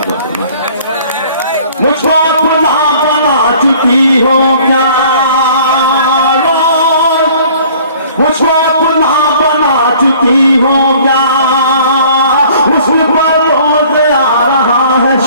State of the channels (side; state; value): both; inverted; correlation -0.53